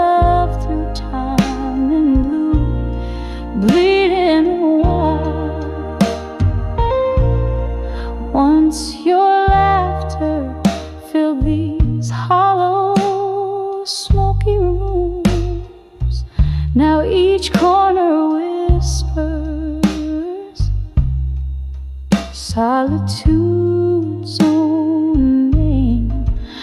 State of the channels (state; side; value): identical; both; correlation 1.00